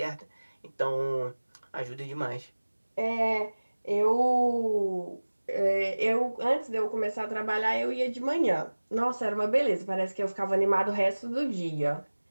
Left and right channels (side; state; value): both; inverted; correlation -1.00